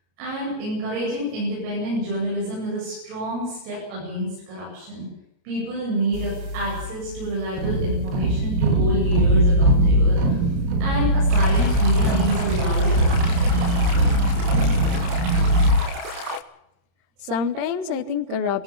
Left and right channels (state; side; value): late; left; 29 ms